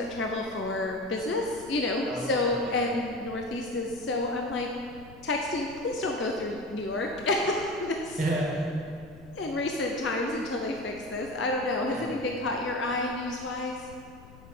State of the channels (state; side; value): noise; left; rumble, 19 dB below the sound